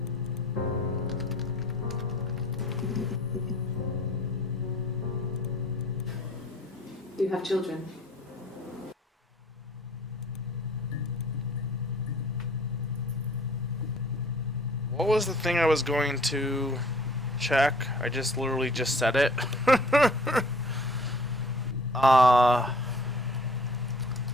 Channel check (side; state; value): both; normal; correlation 0.53